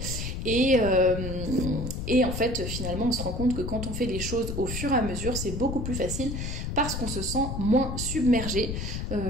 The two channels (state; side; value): noise; left; rumble, 4 dB below the sound